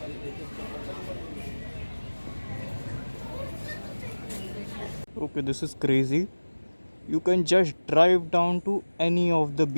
Okay, this is crazy. You can just drive down to any of the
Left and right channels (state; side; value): inverted; both; correlation -1.00